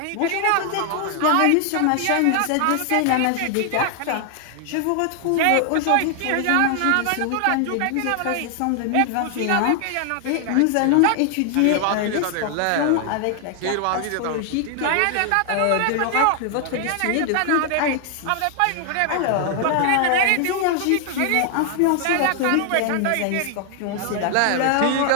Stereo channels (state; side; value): different; both; correlation 0.00